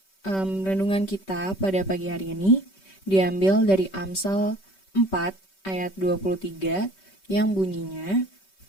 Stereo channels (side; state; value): right; late; 5.2 ms